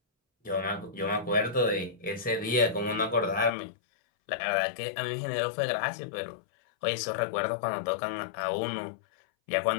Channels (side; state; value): right; drops out; at 3.5 s